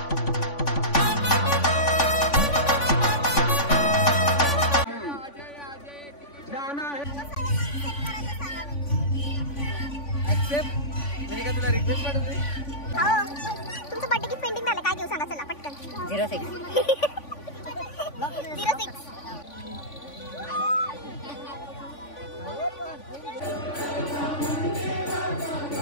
मैंने तुला रिक्वेस्ट पाठवली. तुमचं बर्थडे गिफ्ट पेंडिंग झालं काय घेऊ सांगा चला पटकन. 06 06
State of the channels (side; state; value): right; late; 3.5 ms